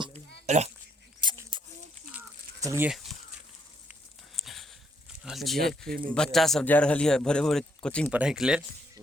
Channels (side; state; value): both; normal; correlation 0.72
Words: चलिए बच्चा सब जा रहा है भोरे भोरे कोचिंग पढ़ाई के लिए